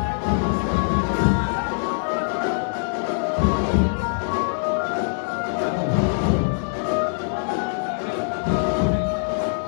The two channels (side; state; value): right; silent; digital silence